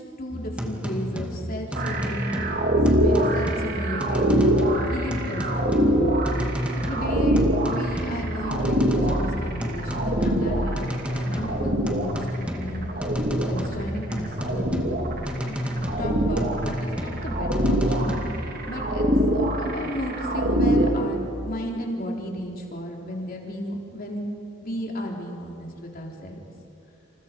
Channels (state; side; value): normal; both; correlation 0.57